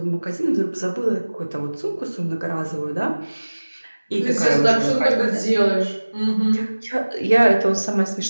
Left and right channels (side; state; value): both; inverted; correlation -1.00